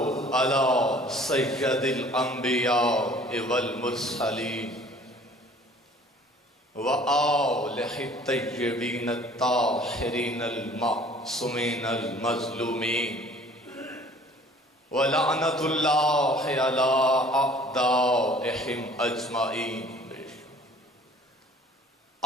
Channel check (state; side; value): normal; both; correlation 0.52